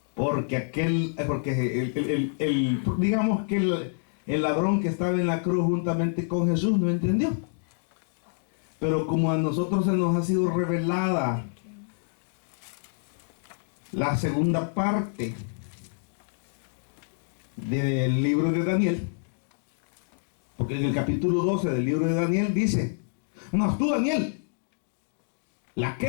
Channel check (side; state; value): right; silent; digital silence